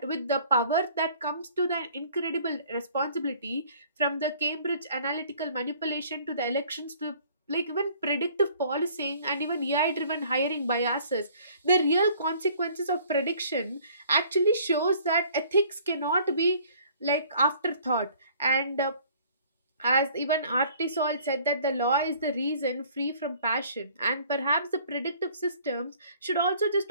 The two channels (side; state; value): both; inverted; correlation -0.55